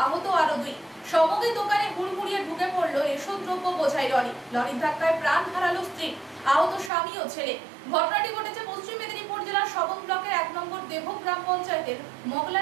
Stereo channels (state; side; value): drops out; left; at 6.9 s